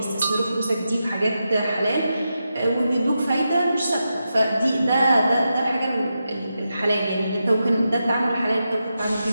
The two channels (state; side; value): inverted; both; correlation -0.88